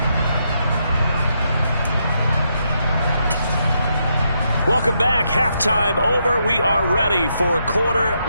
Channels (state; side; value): inverted; both; correlation -0.79